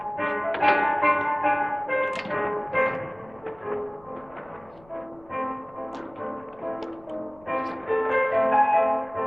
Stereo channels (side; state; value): left; noise; rumble, 27 dB below the sound